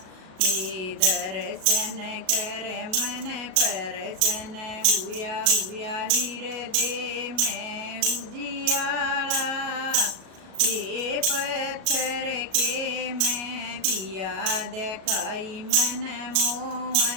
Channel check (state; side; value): late; left; 37 ms